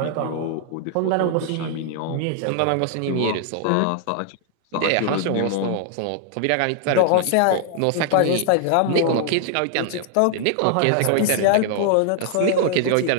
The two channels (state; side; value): different; both; correlation -0.01